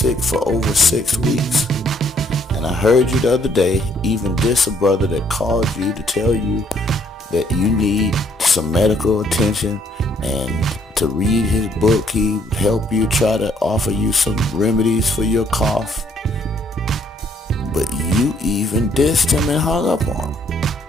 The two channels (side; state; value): both; normal; correlation 0.67